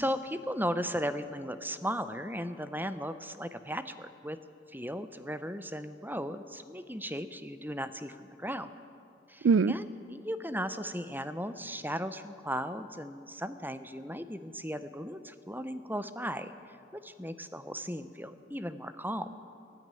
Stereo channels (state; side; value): normal; both; correlation 0.61